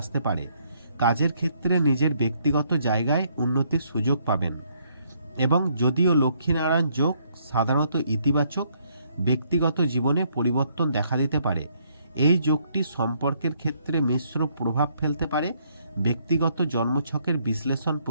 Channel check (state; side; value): inverted; both; correlation -0.69